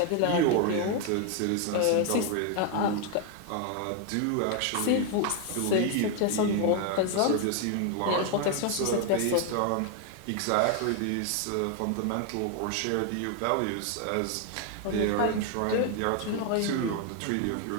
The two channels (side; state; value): both; different; correlation 0.01